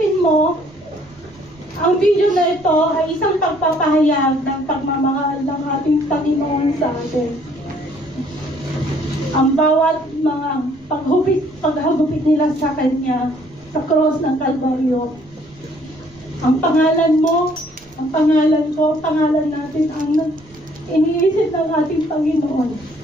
mo, ang video na ito ay isang pagpapahayag ng pagmamahal ng ating Panginoon sa atin. Ang bawat mga paghagupit nila sa Kanya, sa cross ng Kalbaryo. Ang pangalan mo, ang pangalan ko, pangalan natin ang iniisip ng ating Panginoon.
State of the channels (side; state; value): right; noise; rumble, 28 dB below the sound